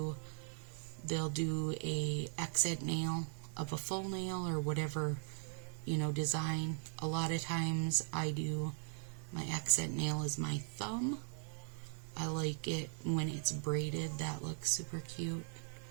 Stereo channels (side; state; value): left; silent; 51 dB below the other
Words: they'll do a accent nail of a full nail or whatever, design. A lot of times I do my accent nail is my thumb. I like it when it's braided. That looks super cute.